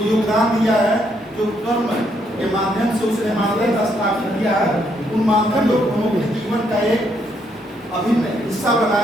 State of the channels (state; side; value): normal; both; correlation 0.74